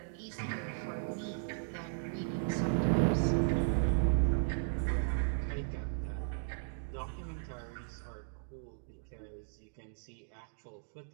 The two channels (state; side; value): silent; left; digital silence